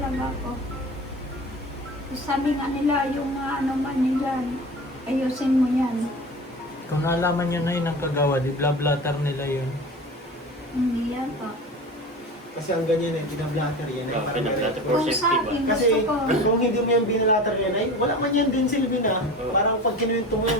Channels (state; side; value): normal; both; correlation 0.33